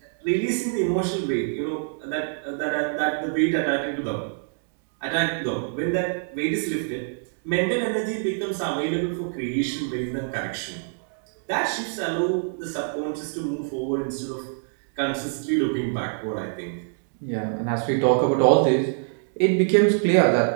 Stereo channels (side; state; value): left; silent; digital silence